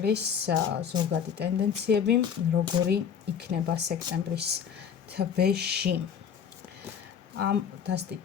ზოგადი ტენდენციები, როგორი იქნება სექტემბრის თვეში. ამ დასტით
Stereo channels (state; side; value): quieter; right; 7.6 dB